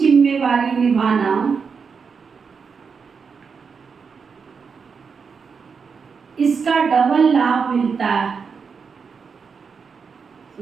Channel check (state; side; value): quieter; left; 5.7 dB